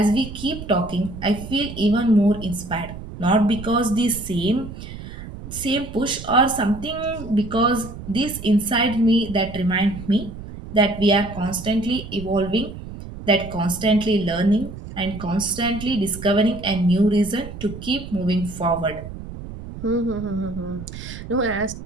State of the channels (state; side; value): noise; right; rumble, 12 dB below the sound